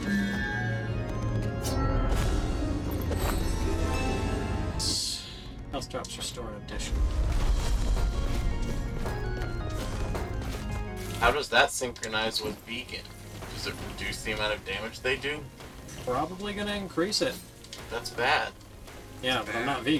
Health drops restore in addition. How does that synchronize with vegan? Does it reduce the amount of damage they do? Probably gonna increase it. That's bad. Yeah, but I'm not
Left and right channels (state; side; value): identical; both; correlation 1.00